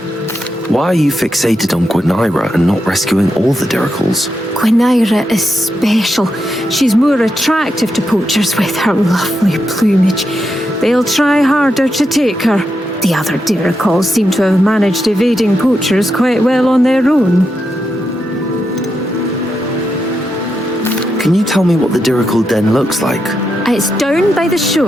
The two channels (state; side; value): normal; both; correlation 0.85